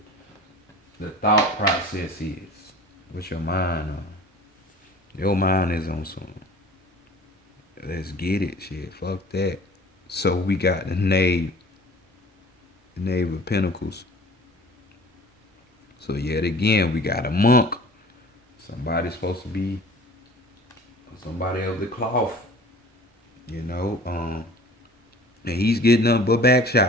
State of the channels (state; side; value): normal; both; correlation 0.45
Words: the thought process is. What's your mind on? Your mind is on some. Let's get it, shit. Fuck that. So we got the Knave of Pentacles. So yet again, we got a monk. Somebody's supposed to be somebody of the cloth, and he's getting them but back